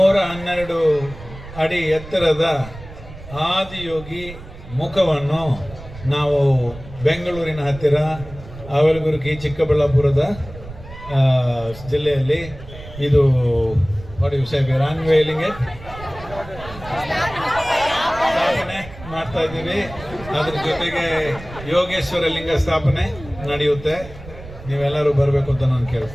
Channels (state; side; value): noise; right; rumble, 15 dB below the sound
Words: ಅಡಿ ಎತ್ತರದ ಆದಿಯೋಗಿ ಮುಖವನ್ನು ನಾವು ಬೆಂಗಳೂರಿನ ಹತ್ತಿರ ಅವಲಗುರ್ಗಿ ಚಿಕ್ಕಬಳ್ಳಾಪುರದ ಜಿಲ್ಲೆಯಲ್ಲಿ ಇದು ಅನ್ವೇಲಿಂಗ್ ಸ್ಥಾಪನೆ ಮಾಡ್ತಾ ಇದ್ದೀವಿ. ಅದ್ರ ಜೊತೆಗೆ ಯೋಗೇಶ್ವರ ಲಿಂಗ ಸ್ಥಾಪನೆ ನಡೆಯುತ್ತೆ. ನೀವೆಲ್ಲರೂ ಬರಬೇಕು ಅಂತ ನಾನು